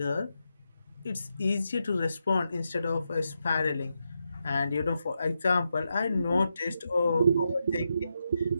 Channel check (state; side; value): inverted; both; correlation -0.85